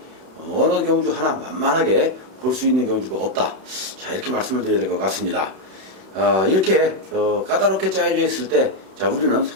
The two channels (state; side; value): late; left; 31 ms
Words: 어느 경주 하나 만만하게 볼 수 있는 경주가 없다. 자, 이렇게 말씀을 드려야 될 것 같습니다. 이렇게 까다롭게 짜여져 있을 때 자, 우리는